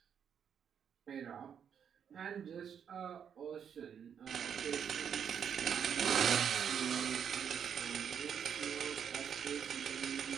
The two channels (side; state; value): left; quieter; 7.9 dB